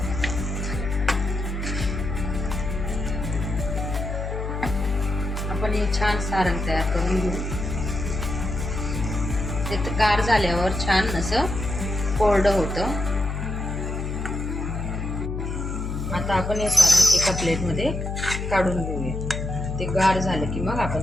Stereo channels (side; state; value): left; noise; hum, 4 dB below the sound